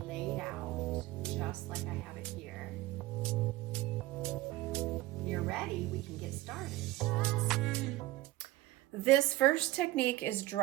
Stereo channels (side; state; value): left; quieter; 17.3 dB